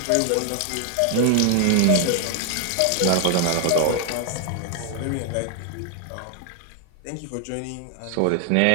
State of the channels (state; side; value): different; both; correlation 0.00